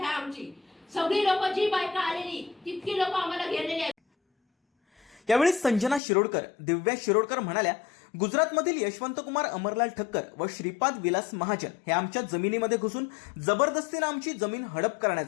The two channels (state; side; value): drops out; right; at 6.0 s